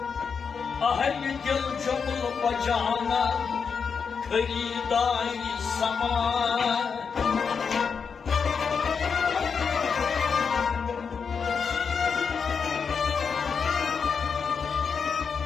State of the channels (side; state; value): right; quieter; 6.0 dB